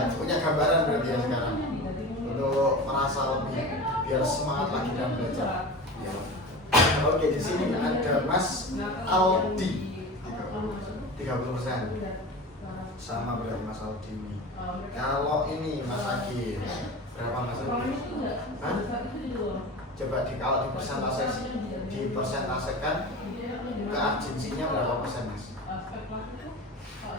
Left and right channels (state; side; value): normal; both; correlation 0.31